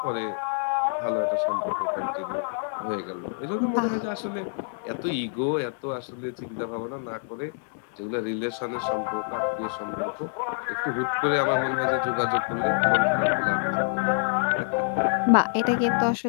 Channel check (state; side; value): silent; right; 61 dB below the other